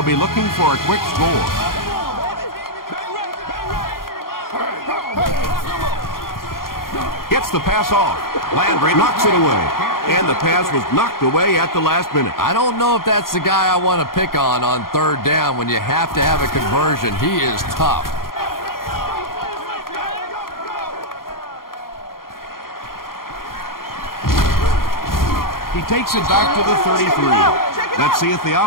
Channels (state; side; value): late; right; 0.92 ms